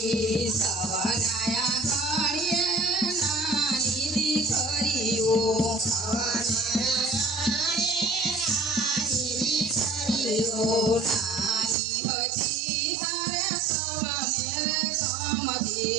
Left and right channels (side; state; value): left; drops out; at 11.8 s